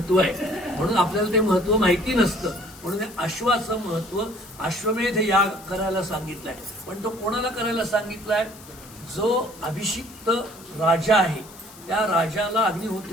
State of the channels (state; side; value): noise; left; hiss, 20 dB below the sound